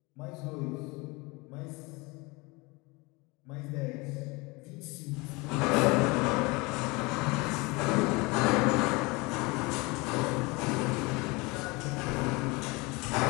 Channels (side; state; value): right; quieter; 25.5 dB